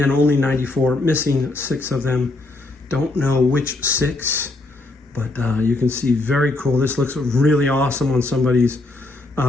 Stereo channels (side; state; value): right; quieter; 3.0 dB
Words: only 94, missing 6 of them. Don't know which 6, but you can see very cool. This looks really awesome on somebody's